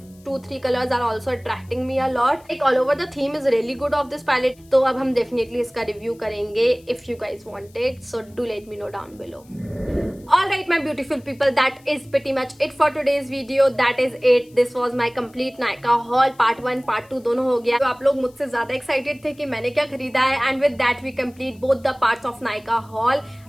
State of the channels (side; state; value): left; noise; hiss, 29 dB below the sound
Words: 2-3 colors are also attracting me a lot. Like all over the theme is really good of this palette. तो अब हम definitely इसका review करेंगे if you guys want it. So do let me know down below. Alright my beautiful people, that is pretty much it for today's video. That is it. This was my complete Nykaa haul. Part 1 Part 2 दोनों हो गया. तो आप लोग मुझसे ज़्यादा excited थे कि मैंने क्या खरीदा है, and with that we complete both the parts of Nykaa haul.